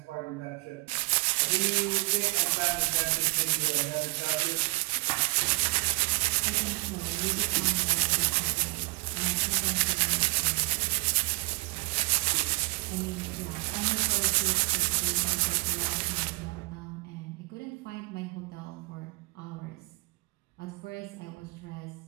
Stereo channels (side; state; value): left; quieter; 27.8 dB